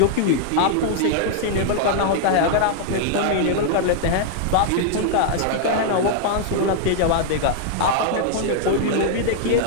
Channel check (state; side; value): different; both; correlation -0.01